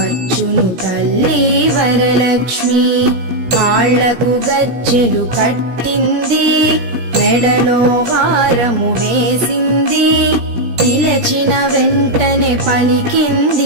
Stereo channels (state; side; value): late; left; 17 ms